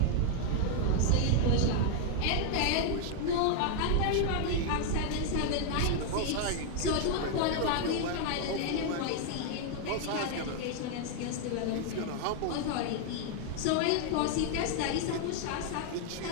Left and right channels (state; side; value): different; both; correlation 0.00